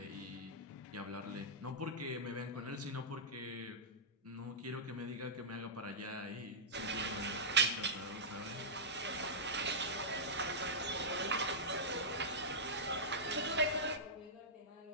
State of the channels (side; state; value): both; normal; correlation -0.13